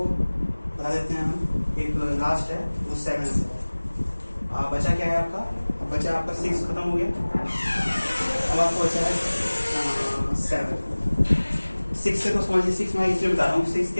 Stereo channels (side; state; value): both; inverted; correlation -1.00